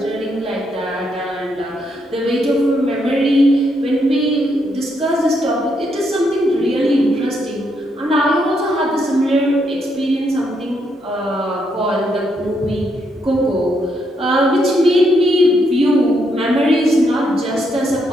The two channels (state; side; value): normal; both; correlation 0.77